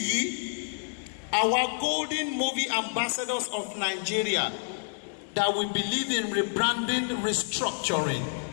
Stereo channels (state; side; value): silent; right; digital silence